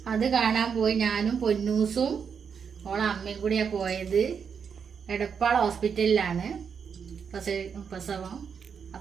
അത് കാണാൻ പോയി. ഞാനും പൊന്നൂസും ഓളെ അമ്മയും കൂടിയാണ് പോയത്. എടപ്പാൾ ഹോസ്പിറ്റലിലാണ് പ്രസവം.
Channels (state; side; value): quieter; left; 6.7 dB